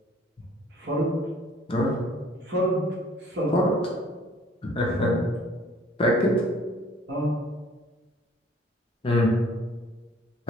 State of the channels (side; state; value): both; normal; correlation 0.55